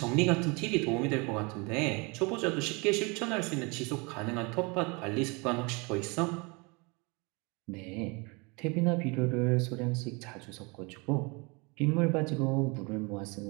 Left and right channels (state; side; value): quieter; left; 28.8 dB